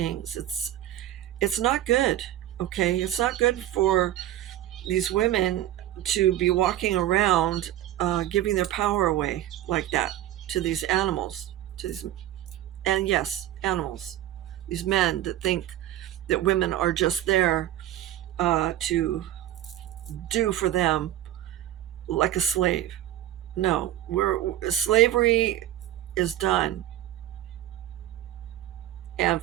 It's not good, okay? It's not good for these women to be walking around giving their power away like that to these animals, and yes, animals, these men that think that women are just there to do for them like a slave. No, slavery is done, and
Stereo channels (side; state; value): left; quieter; 13.2 dB